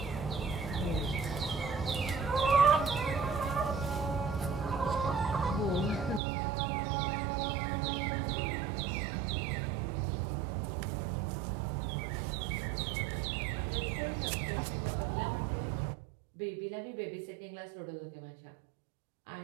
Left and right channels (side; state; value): left; drops out; at 6.2 s